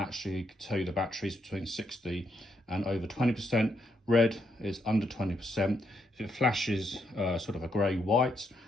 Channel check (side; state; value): both; normal; correlation 0.77